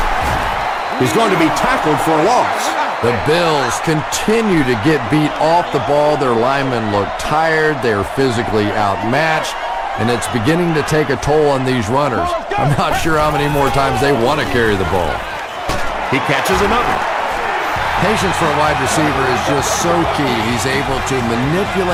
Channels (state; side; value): identical; both; correlation 1.00